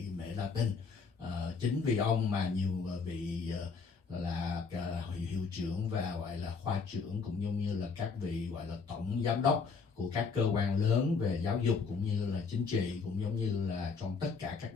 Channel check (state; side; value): quieter; right; 5.1 dB